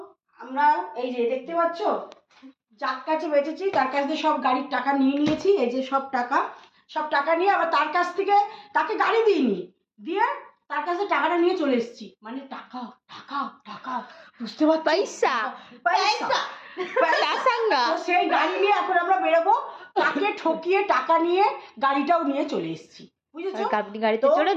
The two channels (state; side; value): identical; both; correlation 1.00